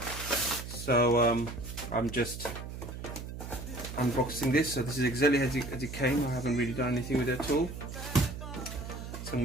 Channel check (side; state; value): right; noise; hum, 9 dB below the sound